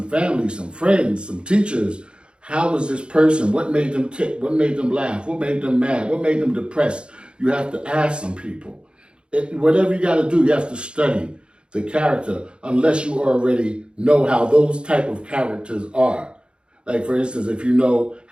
family, some friends, some teachers. How was this person? What made them tick? What made them laugh? What made them mad? What made them depressed? You have to ask some people. Whatever you got to do, you have to study the character unless you already know how those type of characters are. Like, for instance, if you know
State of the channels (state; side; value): late; left; 0.054 ms